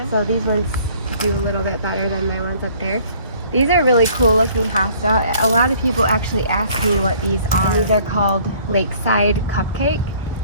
So these ones do a little bit better than my ones up there. These are really cool looking hosta. A lot of people actually ask me what these are. These are called Lakeside Cupcake.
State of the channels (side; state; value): both; inverted; correlation -0.56